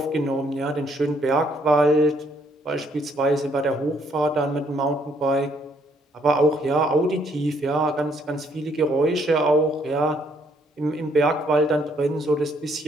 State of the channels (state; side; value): normal; both; correlation 0.68